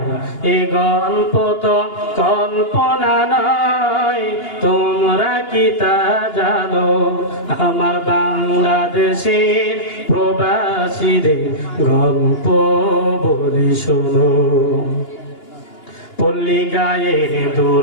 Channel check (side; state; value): right; late; 2.8 ms